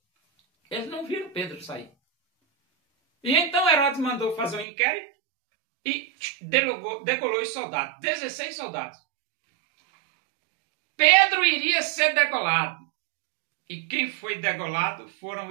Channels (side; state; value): left; drops out; at 4.7 s